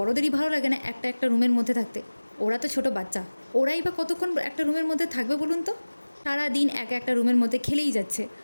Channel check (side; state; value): both; inverted; correlation -1.00